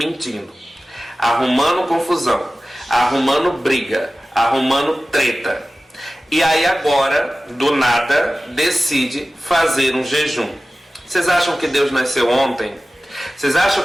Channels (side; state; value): both; normal; correlation 0.96